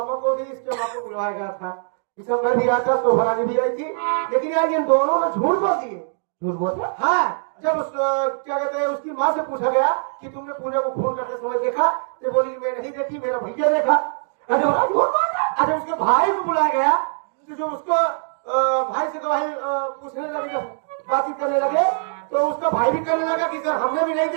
को भी इसके मामा को बुलाया गया था दिसंबर भी आया था तो भरानी भी आई थी लेकिन यार इन दोनों ने झूठ बोल दिए झूठ बोलते हाँ जब उस क्या कहते हैं उसकी माँ से पूछा गया कि तुमने पूजा को फोन करते समय देखा तो बोली मैं नहीं देखी मेरा भैया देखा अरे उसके भाई को बुलाया गया तो जो उसको भाई से भाई पूछने लगे बातचीत करने लगे तो उसका भाई भी करने लगा कि सर हमने भी नहीं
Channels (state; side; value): silent; left; digital silence